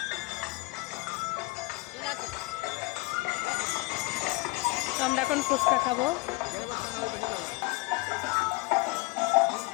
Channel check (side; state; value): right; quieter; 24.6 dB